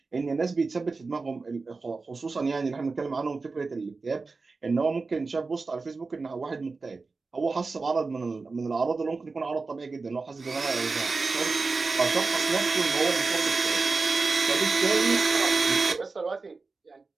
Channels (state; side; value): quieter; left; 4.1 dB